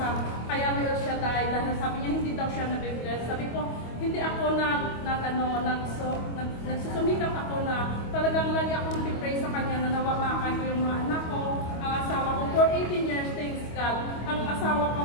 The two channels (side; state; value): right; late; 25 ms